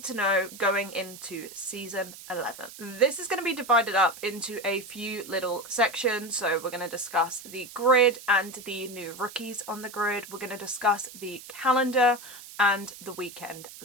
to know going into season 11. This is going to be divided up into a few little sections, so we're going to discuss the grid and the new rookies on the grid. We're going to discuss the calendar and the weekend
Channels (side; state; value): right; noise; hiss, 16 dB below the sound